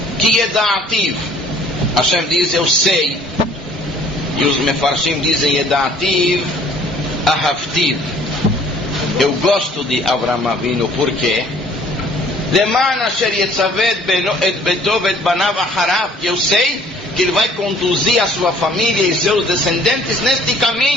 que Yeda'ativ, Hashem diz, eu sei, e os Mefarshim dizem, Yeda'ativ Ahavtiv, eu gosto de Avraham Avinu, por quê? Leman asher yetzaved et betov et banav acharav, eu sei que ele vai conduzir a sua família e seus descendentes neste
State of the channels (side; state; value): both; normal; correlation 0.56